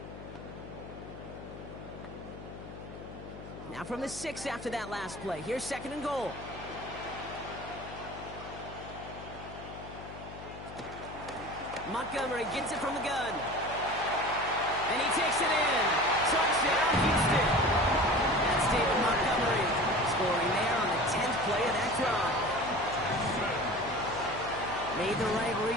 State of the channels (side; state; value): left; noise; hum, 13 dB below the sound